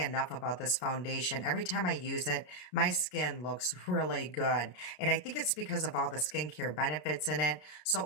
about this foundation. Every time I use it, my skin looks really good. And I think it's because of all the skincare benefits in it. So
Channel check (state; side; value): late; right; 33 ms